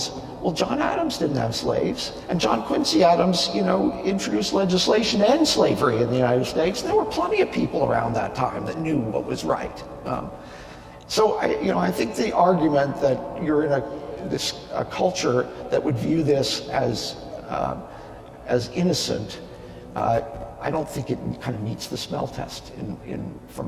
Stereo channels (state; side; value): identical; both; correlation 1.00